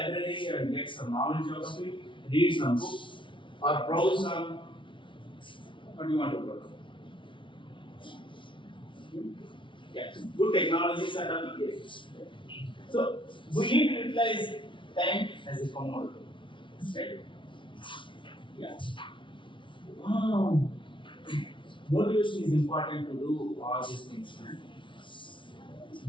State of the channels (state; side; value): late; right; 0.24 ms